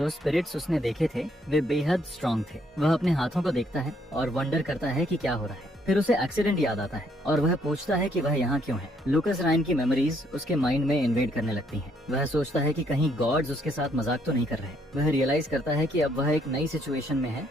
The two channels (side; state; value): both; normal; correlation 0.70